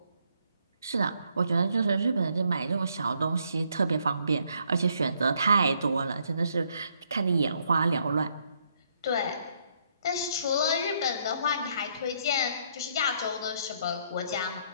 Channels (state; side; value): inverted; both; correlation -0.71